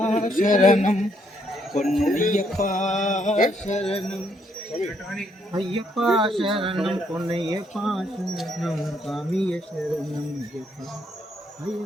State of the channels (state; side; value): normal; both; correlation 0.72